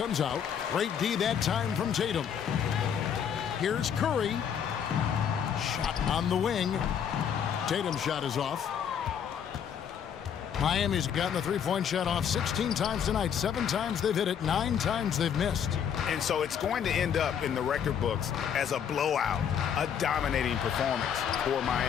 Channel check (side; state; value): right; quieter; 8.2 dB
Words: out. Great D that time from Tatum. Here's Curry. Shot on the wing. Tatum's shot is off. Miami's gotten the three-point shot off 16 times tonight. 7 times they've hit it, 9 times they've missed. And so it's going to end up in the record books as a blowout, a dominating performance for